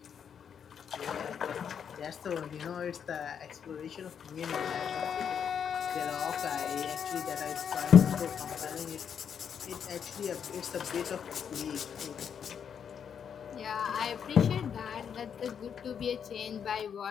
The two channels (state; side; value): quieter; right; 7.7 dB